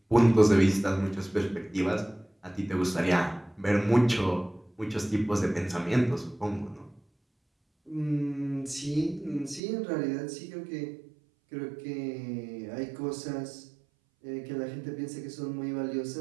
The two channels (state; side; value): drops out; left; at 9.6 s